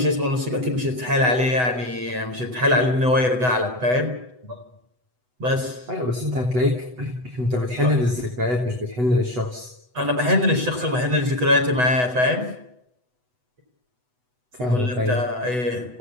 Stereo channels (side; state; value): left; late; 8.0 ms